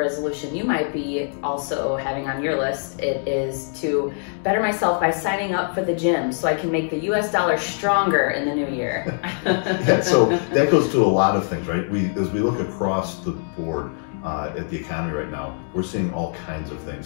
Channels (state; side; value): silent; right; 57 dB below the other